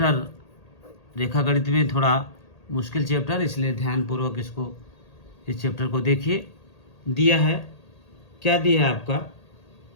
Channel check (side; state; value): right; late; 1.8 ms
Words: रेखा गणित में थोड़ा मुश्किल चैप्टर, इसलिए ध्यानपूर्वक इस चैप्टर को देखिए। दिया है, क्या दिया है आपका,